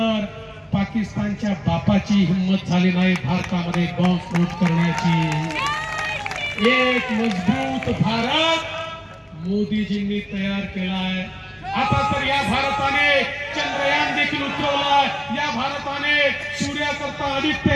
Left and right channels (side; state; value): both; identical; correlation 1.00